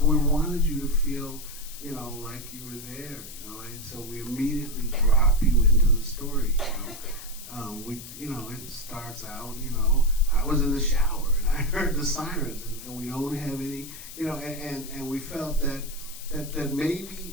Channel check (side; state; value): left; noise; hiss, 13 dB below the sound